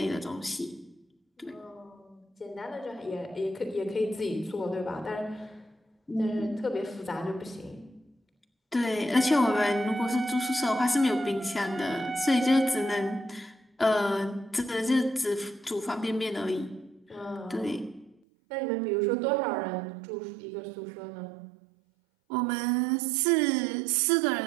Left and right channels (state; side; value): drops out; left; at 18.2 s